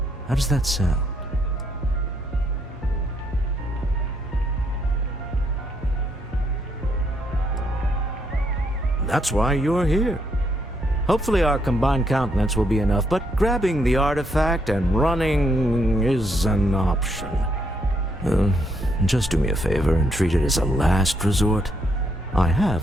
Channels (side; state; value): both; normal; correlation 0.75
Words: How does that sound? That's why you're here. Hopefully our combined countenance will be enough, but grabbing the artifact and running is an option. Just do me a favor and treat it as a last resort. I